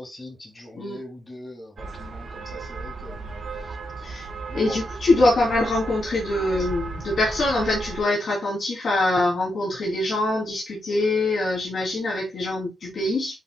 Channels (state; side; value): normal; both; correlation 0.84